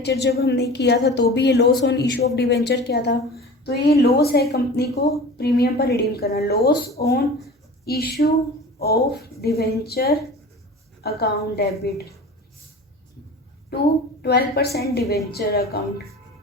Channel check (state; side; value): normal; both; correlation 0.37